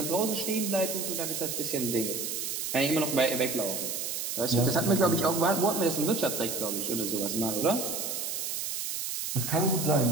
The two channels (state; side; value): noise; right; hiss, 3 dB below the sound